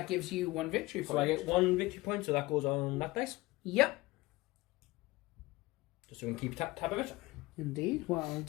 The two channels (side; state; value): right; quieter; 20.3 dB